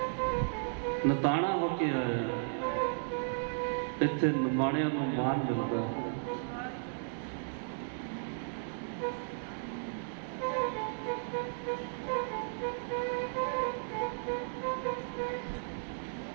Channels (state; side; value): silent; left; digital silence